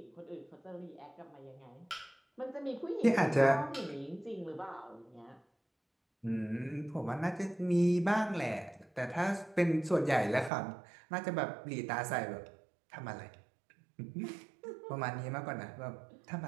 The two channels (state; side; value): drops out; left; at 10.5 s